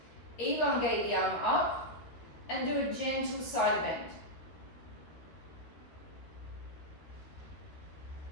Elongate the arm up and do a gentle side bend.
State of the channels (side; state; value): right; late; 13 ms